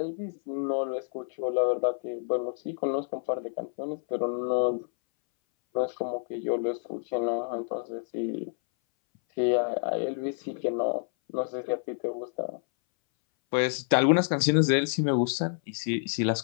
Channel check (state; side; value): silent; right; 59 dB below the other